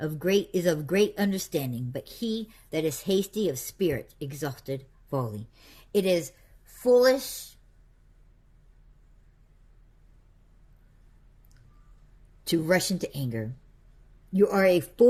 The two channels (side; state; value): both; identical; correlation 1.00